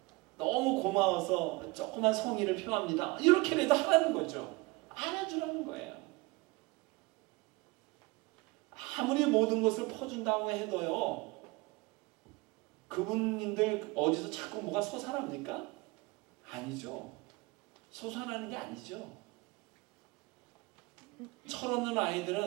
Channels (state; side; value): quieter; left; 23.6 dB